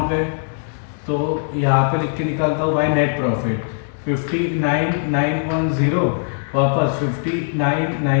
पे, तो यहाँ पे लिख के निकालता हूँ भाई नेट प्रॉफिट 59,910 वापस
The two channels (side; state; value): right; silent; 66 dB below the other